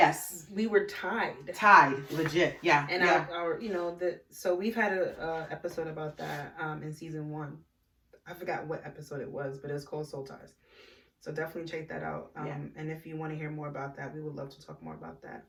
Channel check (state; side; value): identical; both; correlation 1.00